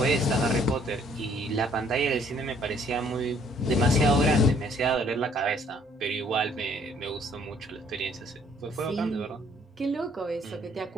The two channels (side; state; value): both; normal; correlation 0.62